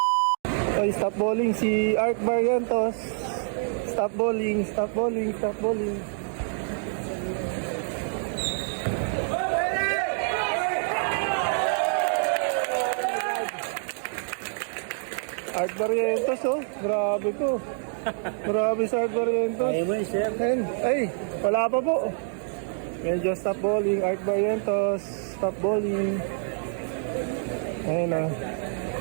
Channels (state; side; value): silent; left; digital silence